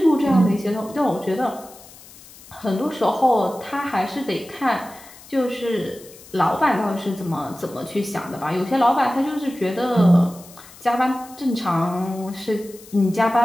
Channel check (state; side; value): noise; left; hiss, 21 dB below the sound